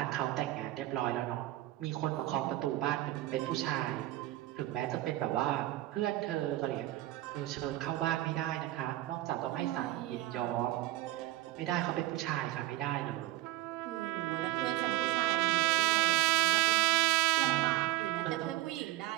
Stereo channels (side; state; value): left; quieter; 17.2 dB